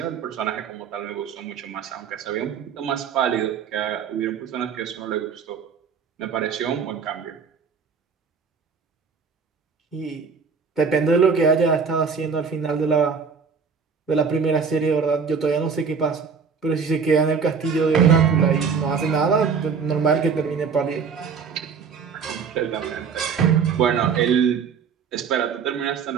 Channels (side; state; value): left; quieter; 5.9 dB